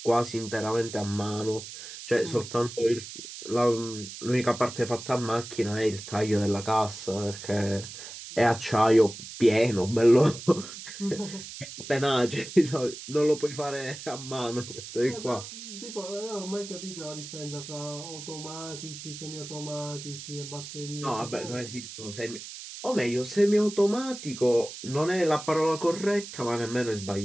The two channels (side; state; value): right; noise; hiss, 12 dB below the sound